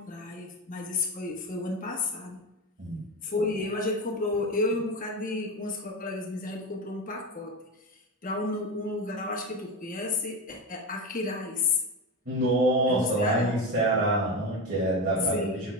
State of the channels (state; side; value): normal; both; correlation 0.20